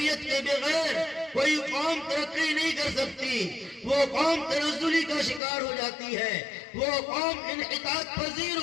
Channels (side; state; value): right; drops out; at 5.4 s